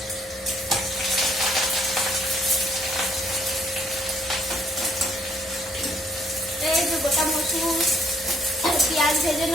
এই যে গোটা মসুর, পেঁয়াজ ভেজে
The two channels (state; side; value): normal; both; correlation 0.66